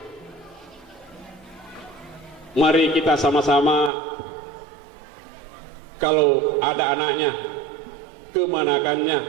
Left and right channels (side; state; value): left; drops out; at 3.9 s